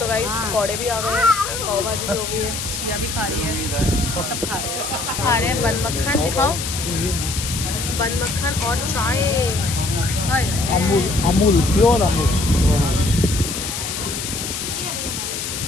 गाइस पकौड़े भी आ गए हैं, पाव भाजी भी हो गई है, चिया भी खा रही है, सब खा रहे हैं बन मक्खन। दिखाओ बन मक्खन और चाय। अमूल प्योर अमूल।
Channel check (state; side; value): noise; left; hiss, 5 dB below the sound